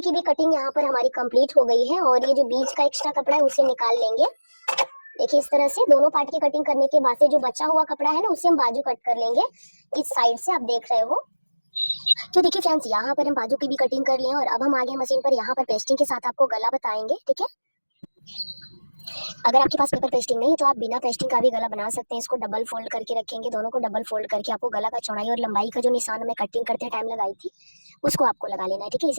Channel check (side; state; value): both; inverted; correlation -1.00